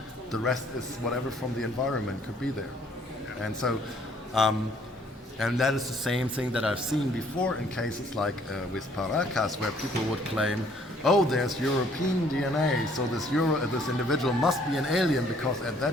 The rest is whatever from the environment could be there. And so and that is the same thing that I've seen before in cases like with Paracas, where people would claim, oh, there's European DNA, so this individual must be an alien, because at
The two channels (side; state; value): both; normal; correlation 0.61